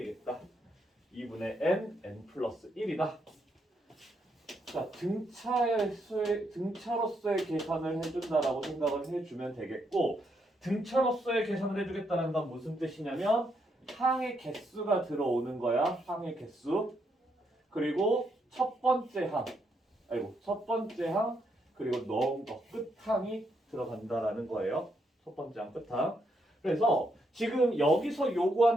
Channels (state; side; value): normal; both; correlation 0.77